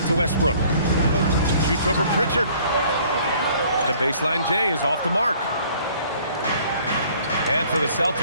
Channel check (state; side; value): inverted; both; correlation -0.57